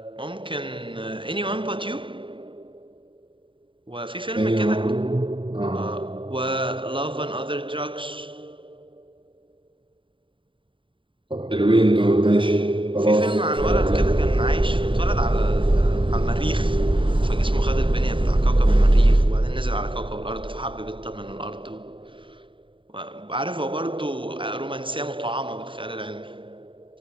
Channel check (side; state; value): left; late; 0.25 ms